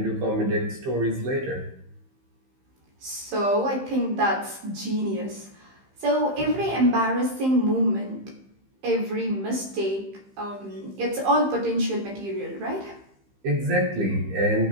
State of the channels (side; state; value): left; late; 15 ms